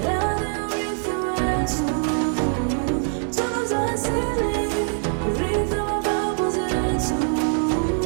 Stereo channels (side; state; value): left; silent; 60 dB below the other